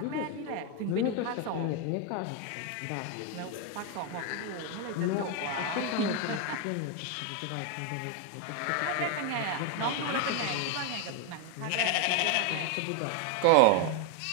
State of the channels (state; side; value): different; both; correlation 0.01